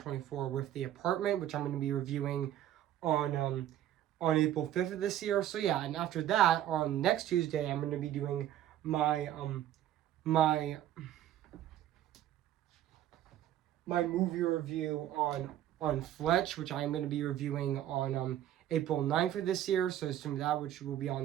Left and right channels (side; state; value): left; quieter; 12.0 dB